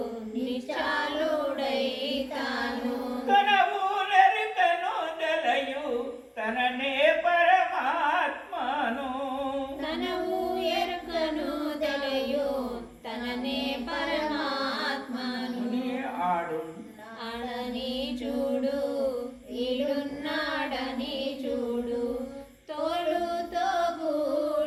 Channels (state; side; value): identical; both; correlation 1.00